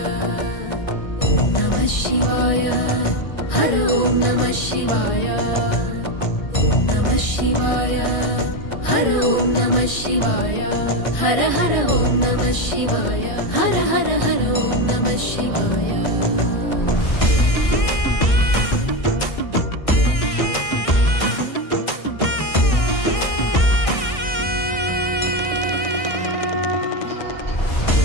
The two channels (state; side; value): late; right; 1.6 ms